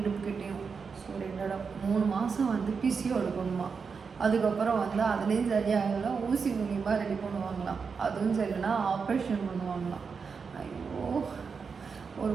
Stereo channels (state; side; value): quieter; left; 5.5 dB